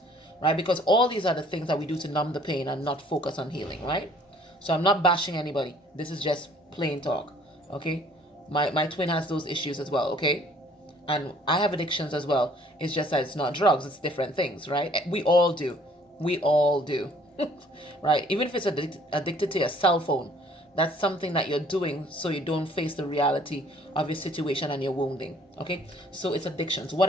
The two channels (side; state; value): both; normal; correlation 0.58